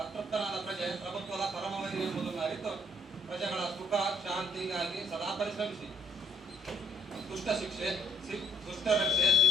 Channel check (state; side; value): normal; both; correlation 0.64